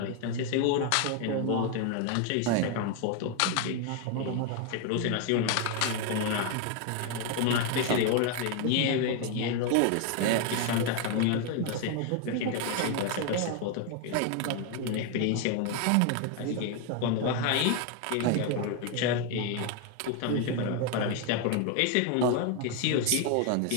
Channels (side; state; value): both; different; correlation 0.01